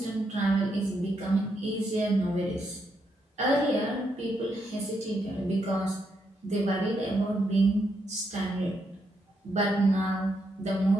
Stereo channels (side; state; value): both; normal; correlation 0.79